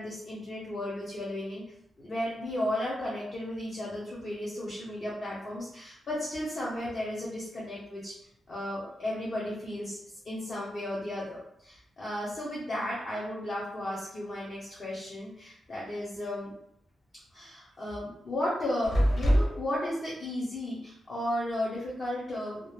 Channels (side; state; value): both; normal; correlation 0.88